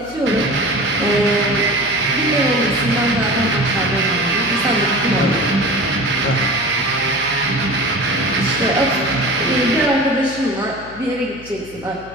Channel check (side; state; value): left; noise; hum, 20 dB below the sound